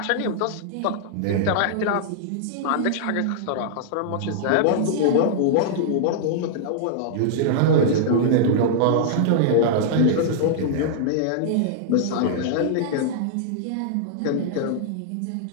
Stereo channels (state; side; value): different; both; correlation -0.01